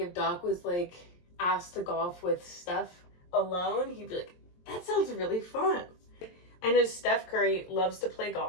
Doc was like asked to golf with Steph alone, he'd be like, that sounds really fun. I know Steph Curry loves to play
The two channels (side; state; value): right; late; 23 ms